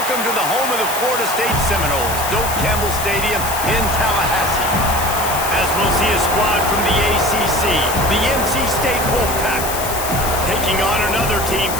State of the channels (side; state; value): left; noise; hiss, 6 dB below the sound